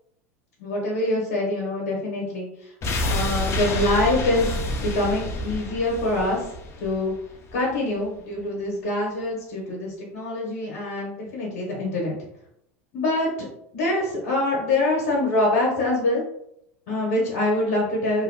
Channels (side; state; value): both; normal; correlation 0.24